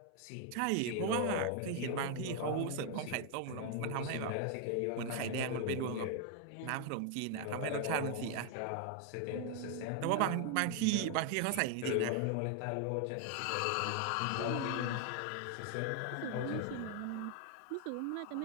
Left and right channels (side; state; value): both; different; correlation 0.01